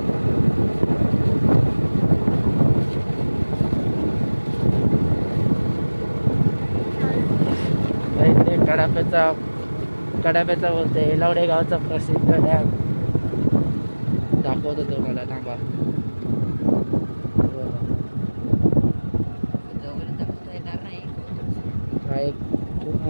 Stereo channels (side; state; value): both; inverted; correlation -1.00